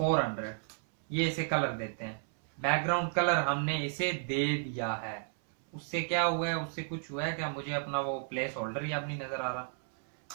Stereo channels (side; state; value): left; silent; 56 dB below the other